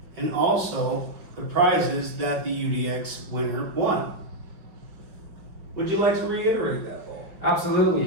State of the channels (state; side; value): late; left; 5.1 ms